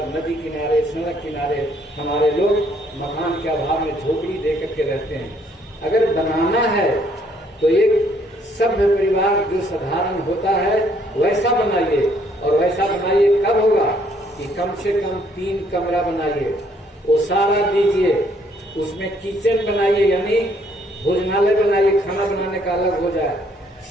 नदी किनारे, सड़क किनारे हमारे लोग मकान के अभाव में झोपड़ी दे करके रहते हैं। अगर बनाना है तो एक सभ्य परिवार जो साधारण होता है वैसा बनाइए, और वैसा बनाइए कब होगा कि कम से कम 3 कमरा बनाइए, ओसारा दीजिए, उसमें किचन बनाइए, यानी भोजनालय बनाइए, खाना बनाने का अलग हो जाए,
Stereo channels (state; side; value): normal; both; correlation 0.66